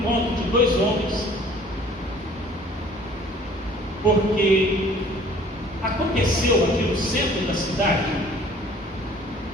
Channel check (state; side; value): normal; both; correlation 0.53